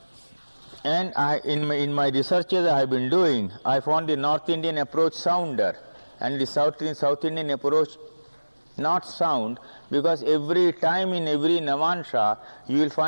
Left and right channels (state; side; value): inverted; both; correlation -1.00